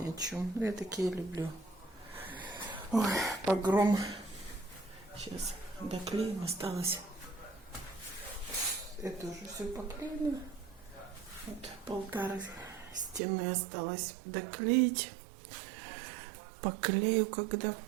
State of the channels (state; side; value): drops out; left; at 13.2 s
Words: о чем. Я такие люблю. Ой, погром. Сейчас доклеим, осталось. Это уже все поклеено. Вот полтора стены осталось доклеить. Поклею, когда